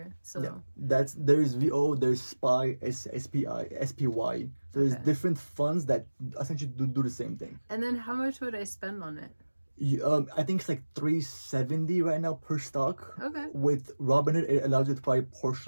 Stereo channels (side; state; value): both; inverted; correlation -1.00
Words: So Yeah. There's VO, there's SPY, SPI, SPY. So there's Okay. different funds that essentially do the same thing. And then how much would I spend on it? I think it's like $370 right now per stock. Okay. With Robinhood, it allows you to buy